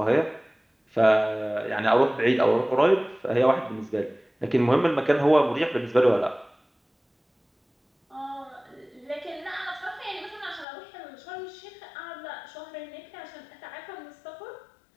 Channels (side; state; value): right; drops out; at 10.7 s